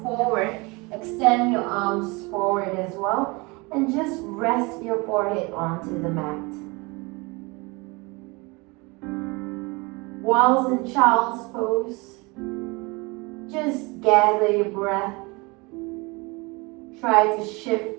forward, extend your arms forward as well, and just rest your forehead onto the mat. Whilst in child's pose, just gather your breath. Try to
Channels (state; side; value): quieter; left; 26.4 dB